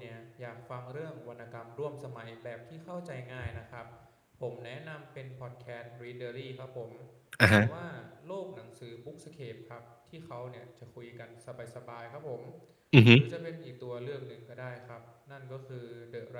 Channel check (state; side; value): identical; both; correlation 1.00